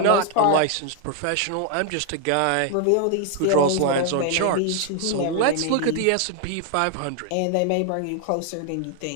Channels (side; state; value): both; different; correlation 0.00